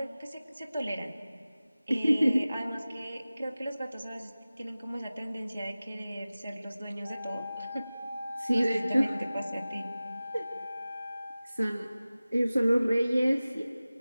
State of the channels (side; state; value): both; inverted; correlation -0.97